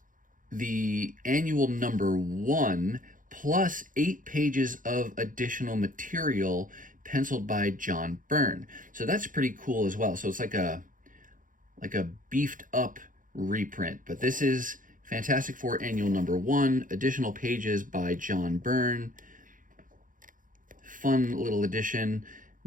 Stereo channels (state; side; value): late; left; 0.39 ms